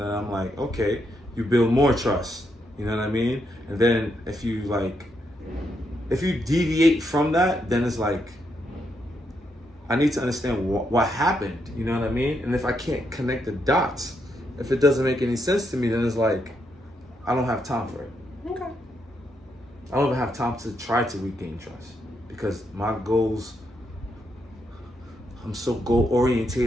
I'm like, okay, you build more trust. You know what I mean? And then if you deviate from that, then it's like, I need to understand what happened. You know what I mean? And if I can't connect the dots, if it doesn't make any sense to me, then it's like, I don't have time for it. Okay. I don't even have time to try to regain trust, because my goals, I'm so goal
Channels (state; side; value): normal; both; correlation 0.79